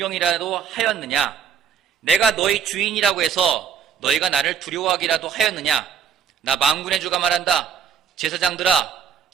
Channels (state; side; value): quieter; left; 7.8 dB